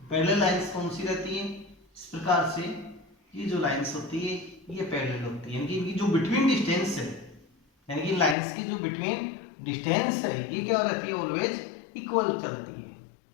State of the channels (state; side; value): drops out; right; at 8.3 s